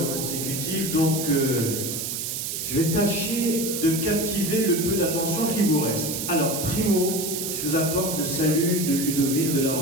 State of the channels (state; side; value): noise; right; hiss, 3 dB below the sound